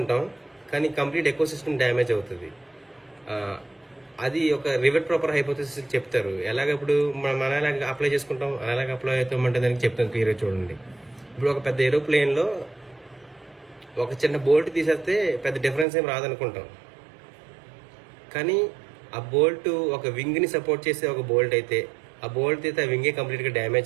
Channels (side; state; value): left; drops out; at 15.9 s